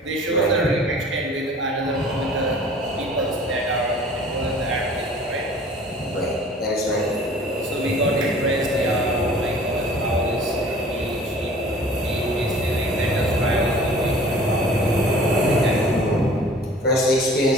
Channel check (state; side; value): normal; both; correlation 0.48